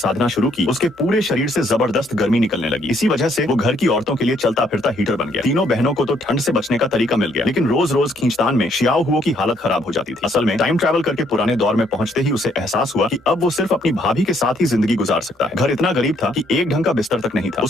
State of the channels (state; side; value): normal; both; correlation 0.69